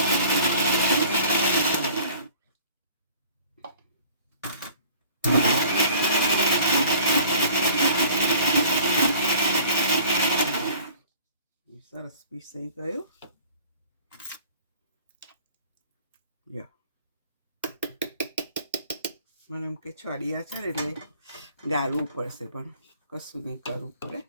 સરસ પીસાઈ ગયું. મને એમ કે છડિયા છે ને એટલે ગાળવું પડશે, પણ કશું નહીં, કરવું પડે.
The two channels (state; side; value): inverted; both; correlation -0.50